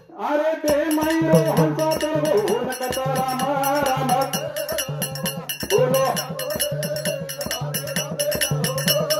अरे दे माईरो हंसा तर हो नकता राम राम बोलो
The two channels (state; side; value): identical; both; correlation 1.00